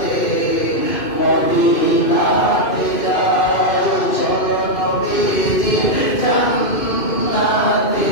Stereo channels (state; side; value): late; right; 2.5 ms